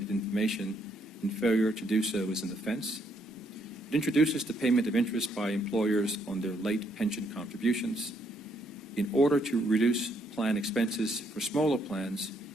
information, and failure to do so is an offense. It introduces the payment of interest by employers on their late pension contributions. In order to reduce plan expenses for smaller plans,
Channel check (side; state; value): both; normal; correlation 0.72